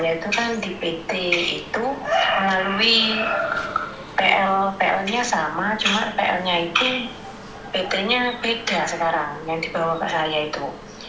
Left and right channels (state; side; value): identical; both; correlation 1.00